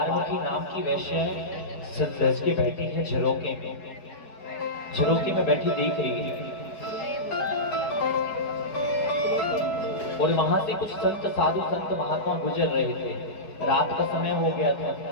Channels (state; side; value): late; right; 4.7 ms